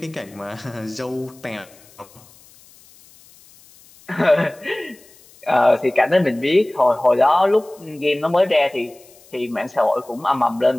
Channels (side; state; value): left; noise; hiss, 26 dB below the sound